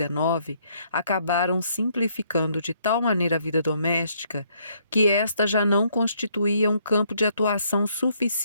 acabaram simplificando de tal maneira a vida doméstica que esta já não constituía um campo de atuação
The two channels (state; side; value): inverted; both; correlation -0.69